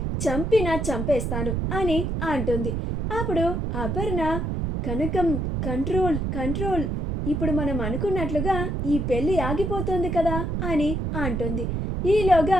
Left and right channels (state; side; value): noise; right; rumble, 1 dB below the sound